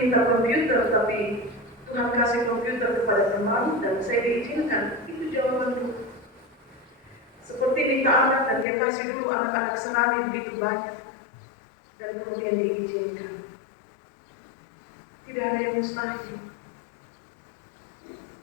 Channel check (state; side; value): drops out; right; at 8.7 s